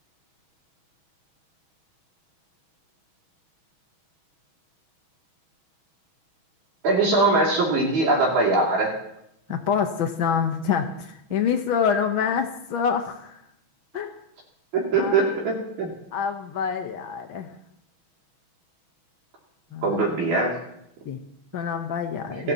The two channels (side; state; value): left; late; 6.2 ms